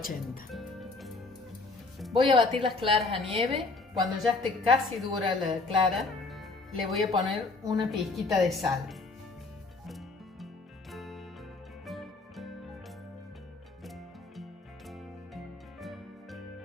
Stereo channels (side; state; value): right; quieter; 3.7 dB